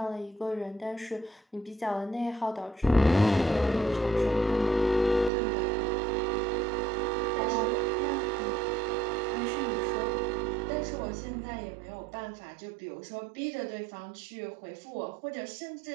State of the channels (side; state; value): left; drops out; at 5.3 s